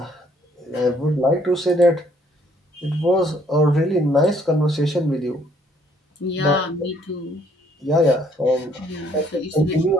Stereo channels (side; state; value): both; normal; correlation 0.65